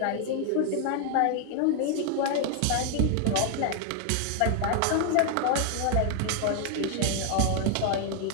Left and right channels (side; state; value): both; different; correlation 0.00